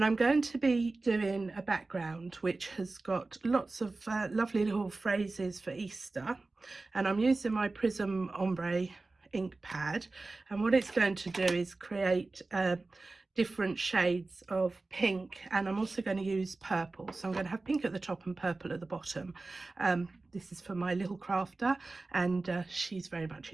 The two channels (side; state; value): left; quieter; 3.4 dB